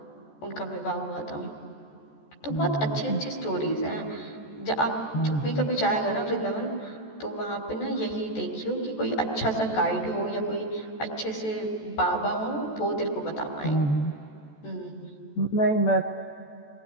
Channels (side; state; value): right; late; 14 ms